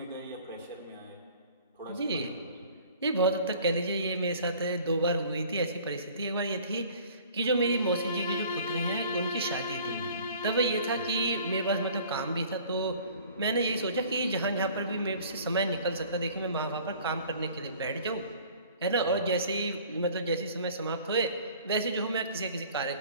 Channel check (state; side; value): inverted; both; correlation -0.50